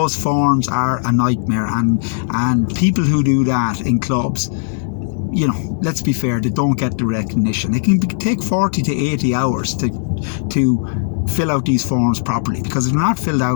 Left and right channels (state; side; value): silent; right; digital silence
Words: forms are a nightmare, and people who do that in clubs, let's be fair, they don't get the recognition. It can take 40 to 80 hours to fill out these forms properly, because if they're not filled